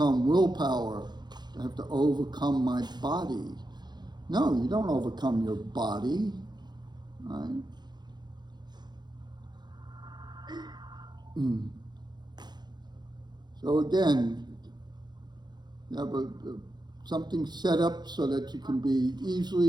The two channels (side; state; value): left; late; 0.21 ms